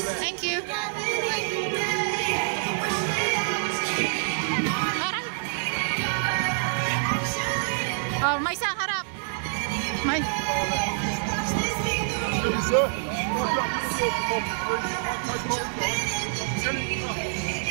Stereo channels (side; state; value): left; silent; digital silence